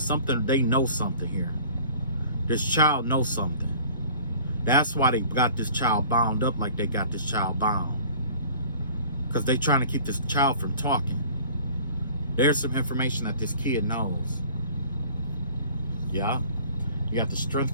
they know something here. This child knows something. That's why they got this child bound up like they got this child bound. Because they're trying to keep this child from talking. There's some information that this kid knows. Yeah. You got the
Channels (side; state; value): both; inverted; correlation -0.47